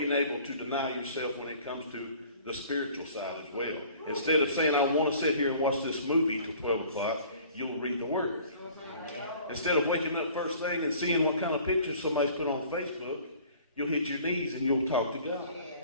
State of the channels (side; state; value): both; inverted; correlation -0.50